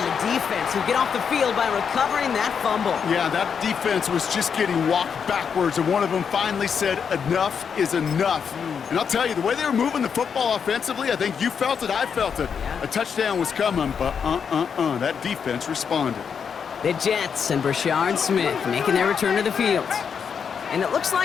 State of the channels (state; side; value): quieter; right; 6.8 dB